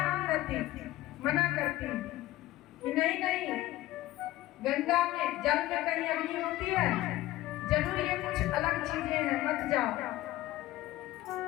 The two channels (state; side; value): quieter; right; 16.1 dB